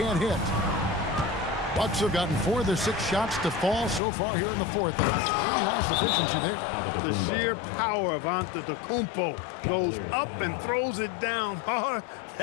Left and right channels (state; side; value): drops out; right; at 4.0 s